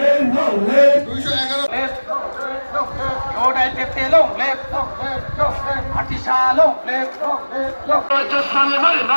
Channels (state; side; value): inverted; both; correlation -1.00